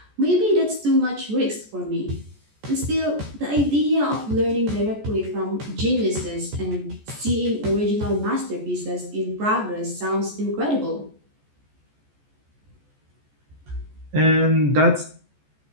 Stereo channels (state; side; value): late; left; 14 ms